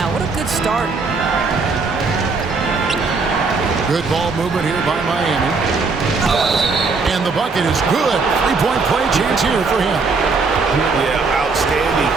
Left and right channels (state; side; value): quieter; left; 4.3 dB